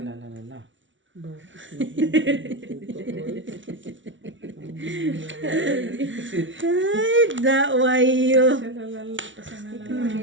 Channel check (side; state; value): left; late; 0.56 ms